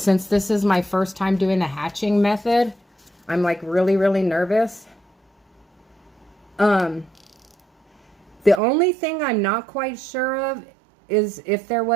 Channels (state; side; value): drops out; left; at 8.6 s